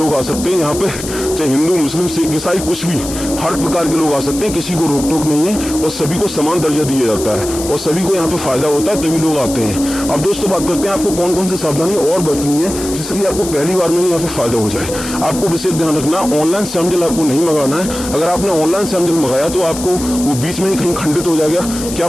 आ सकते हैं। यहाँ पे चाहे हिंदू मुस्लिम सिख ईसाई कुछ भी, हर प्रकार के लोग आ सकते हैं, किसी को रोक टोक नहीं है और सभी को समान दर्जा दिया जाता है और सभी को यहाँ पे फायदा होता है, तभी लोग आते हैं। अब दोस्तों बात करते हैं आपको कौन कौन सी सावधानी और बरतनी है जिससे कि आपको पहली बार में यहाँ पे फायदा हो जाए। आपको विशेष ध्यान रखना, ऑनलाइन श्याम जल आपको नहीं मंगाना है। अगर आपने ऑनलाइन श्याम जल मंगाया तो आपको वो बीच में ही कहीं खंडित हो जाएगा, क्या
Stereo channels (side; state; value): left; noise; hiss, 9 dB below the sound